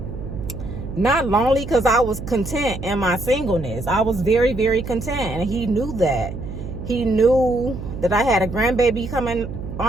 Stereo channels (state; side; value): noise; right; hum, 8 dB below the sound